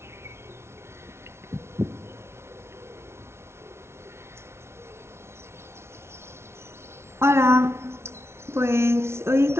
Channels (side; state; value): left; late; 0.12 ms